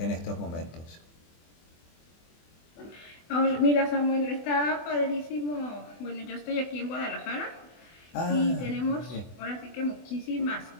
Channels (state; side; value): late; right; 24 ms